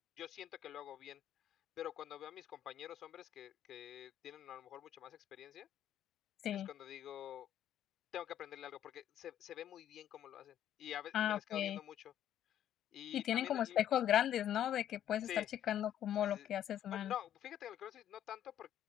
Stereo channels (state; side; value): quieter; right; 10.9 dB